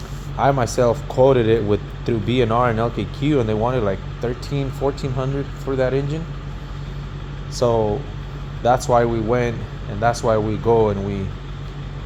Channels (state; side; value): identical; both; correlation 1.00